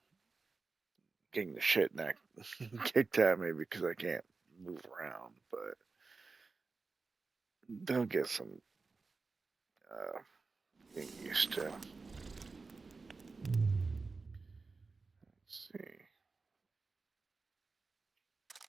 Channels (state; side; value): quieter; left; 4.1 dB